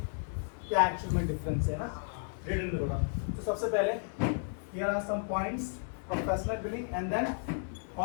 क्या एक्चुअल में डिफरेंस है ना, रिटन में थोड़ा। तो सबसे पहले here are some points, professional billing and then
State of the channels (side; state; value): right; silent; digital silence